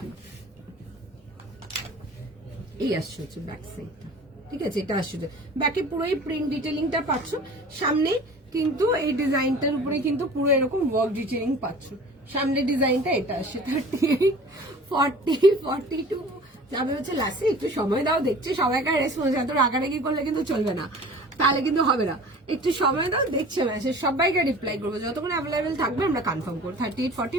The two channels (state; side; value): normal; both; correlation 0.44